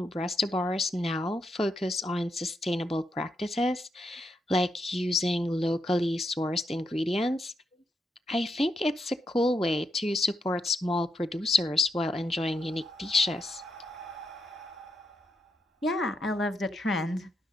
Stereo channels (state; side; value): normal; both; correlation 0.81